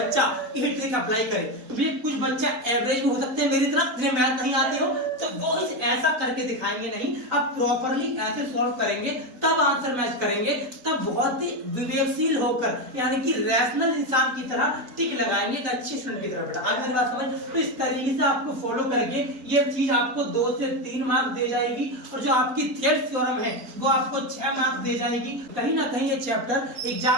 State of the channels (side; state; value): left; late; 4.1 ms